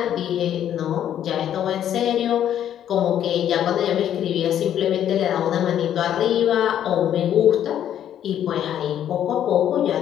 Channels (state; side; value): quieter; right; 10.4 dB